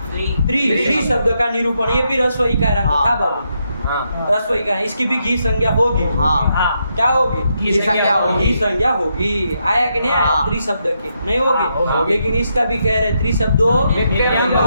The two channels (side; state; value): both; inverted; correlation -0.80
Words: त्रि शब्द का निरूपण। ये भी रसोई का रंग था बाबू, रसोई का। इसकी भी घी संज्ञा होगी। क्या होगी? घी संज्ञा होगी। घी संज्ञा होगी। आया कि नहीं आया? त्रि शब्द की नहीं होगी, लेकिन इसका भी कह रहे त्रि शब्दो नित्य